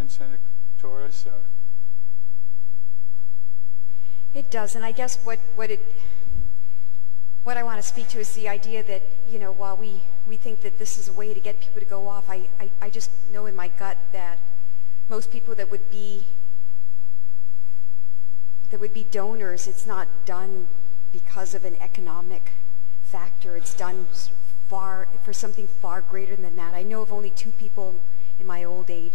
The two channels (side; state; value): right; quieter; 24.9 dB